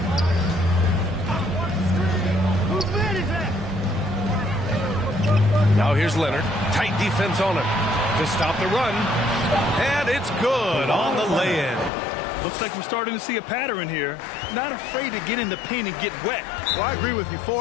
Now here's Leonard. Tight defense on him to stop the run. And it's good on the lay-in. Looks like we're starting to see a pattern here. Not afraid to get in the paint and get wet. Well, I agree with you.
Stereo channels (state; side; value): drops out; right; at 11.9 s